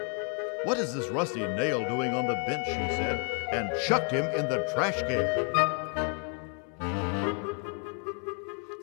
"What is this rusty nail doing on the bench?" she said, and chucked him in the trash can.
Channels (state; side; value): quieter; right; 39.2 dB